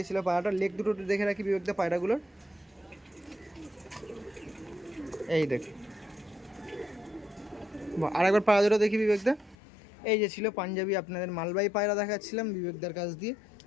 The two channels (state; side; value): drops out; right; at 9.6 s